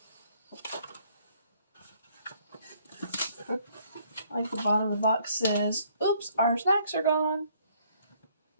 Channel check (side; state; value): both; inverted; correlation -0.64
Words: Like the bottom of the box says, oops, our snacks are gone.